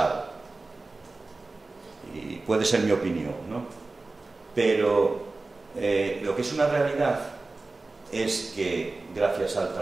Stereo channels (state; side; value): quieter; left; 3.4 dB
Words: y puede ser mi opinión, ¿no? Pero lo que es una realidad es que gracias al